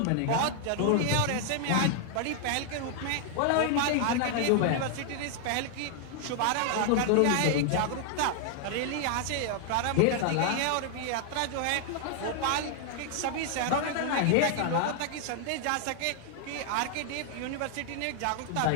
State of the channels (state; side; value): different; both; correlation 0.00